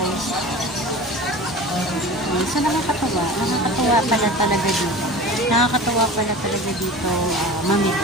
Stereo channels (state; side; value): normal; both; correlation 0.36